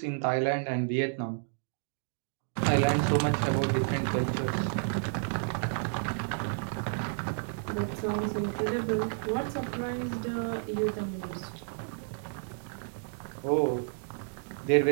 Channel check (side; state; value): left; silent; digital silence